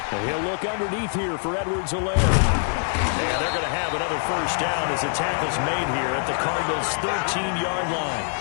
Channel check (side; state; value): right; silent; 62 dB below the other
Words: And he'll look underneath here for Edwards-Helaire. And they're going to have another first down as the tackle's made here at the Cardinals' 13-yard line.